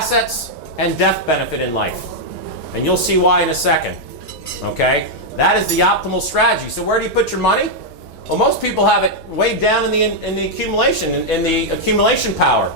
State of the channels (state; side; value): normal; both; correlation -0.02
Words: and death benefit in life. And you'll see why in a second. Okay? That is the optimal strategy. So where do you put your money? Well, most people have it way down in the accumulation power,